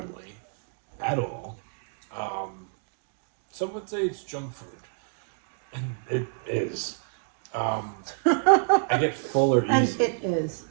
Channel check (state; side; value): silent; left; digital silence